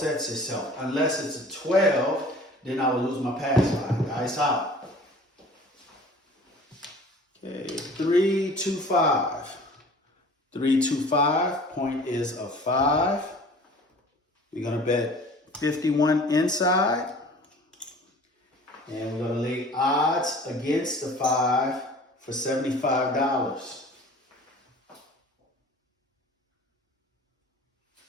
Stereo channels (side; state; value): both; normal; correlation 0.46